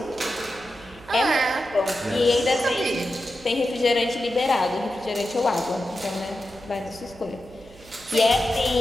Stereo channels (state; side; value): noise; right; hum, 22 dB below the sound